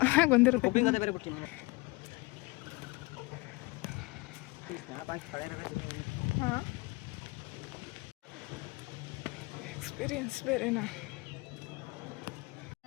ಬಂದಿರುತ್ತೆ. ಎಕ್ಸ್ಪೀರಿಯನ್ಸ್ ಬೇರೆನಾ.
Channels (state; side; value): quieter; right; 24.5 dB